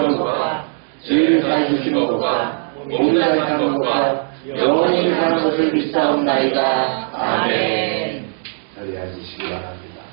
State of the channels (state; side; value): silent; left; 57 dB below the other